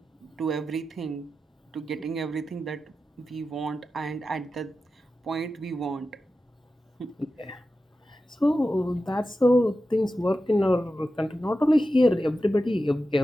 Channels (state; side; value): normal; both; correlation 0.92